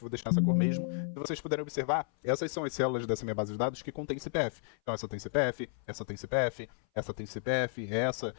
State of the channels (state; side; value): silent; right; 56 dB below the other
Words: deixar essa cor mesmo. Se vocês puderem observar, essas são as células dessa minha base de dados que contém CPF. Então essa tem CPF, essa tem CPF, essa tem CPF, essa,